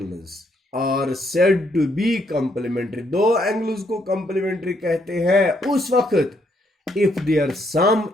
are said to be complementary. 2 angles को कंप्लीमेंट्री कहते हैं उस वक्त इफ देयर सम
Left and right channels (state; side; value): normal; both; correlation 0.72